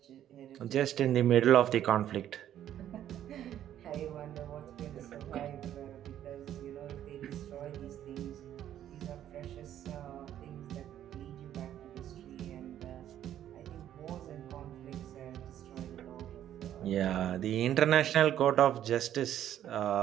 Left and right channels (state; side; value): quieter; left; 11.2 dB